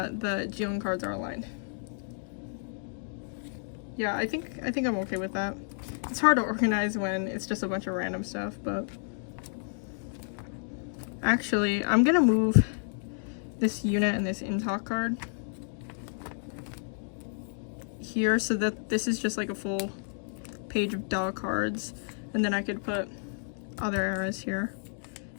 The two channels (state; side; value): silent; right; digital silence